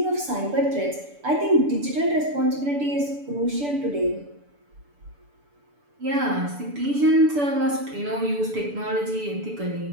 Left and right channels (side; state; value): left; late; 6.9 ms